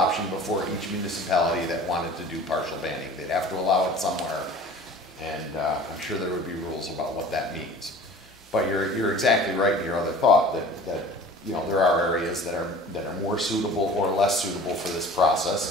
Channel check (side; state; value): both; normal; correlation 0.43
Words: before each municipality that wanted to do partial banning. They'd have to allow it somewhere, and I'm sure there would be rules about what that means. But you're exactly right in your other thought that you know there are areas that are more suitable or less suitable for this